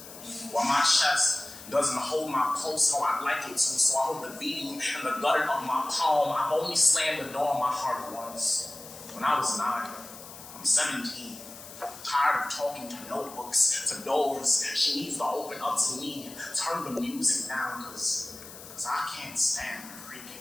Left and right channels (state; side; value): noise; left; hiss, 15 dB below the sound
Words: While my chest doesn't hold my pulse how I'd like it to, so I hold the beating in the gutter of my palm. I've only slammed the door on my heart once, when I was 9. I'm 17, tired of talking to notebooks, to doors. She needs to open up to me, turn the music down, because I can't stand the